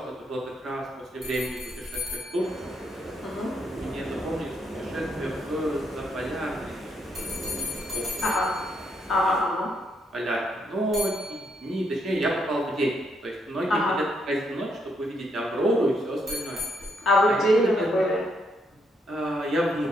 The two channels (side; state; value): both; normal; correlation 0.75